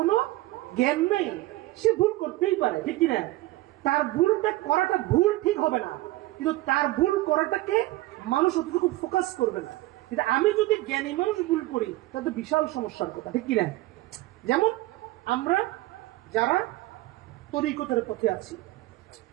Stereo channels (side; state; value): left; quieter; 18.4 dB